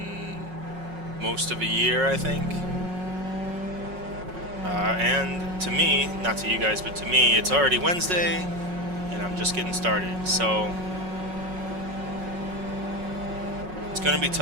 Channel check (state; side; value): late; left; 5.4 ms